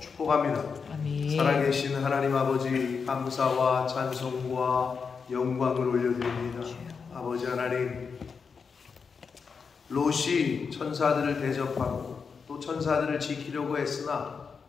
축복합니다. 아멘. 살아계신 하나님 아버지, 감사와 찬송과 영광을 올려드립니다. 아버지 하나님, 롯이 천사들을 대접하고 또 천사들을 지키려고 했으나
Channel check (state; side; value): quieter; right; 5.6 dB